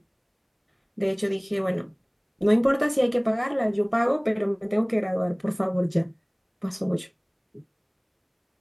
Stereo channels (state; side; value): identical; both; correlation 1.00